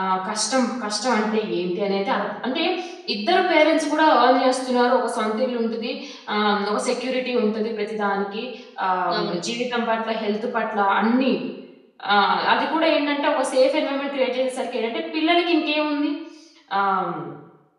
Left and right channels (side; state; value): both; identical; correlation 1.00